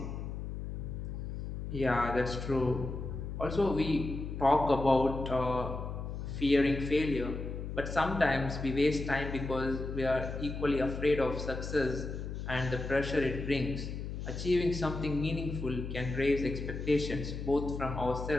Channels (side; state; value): left; noise; hum, 6 dB below the sound